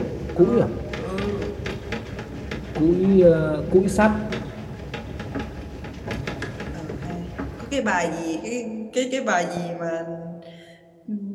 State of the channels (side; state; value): both; identical; correlation 1.00